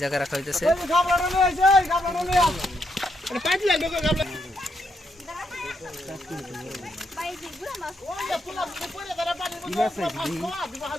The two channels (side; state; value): both; normal; correlation 0.78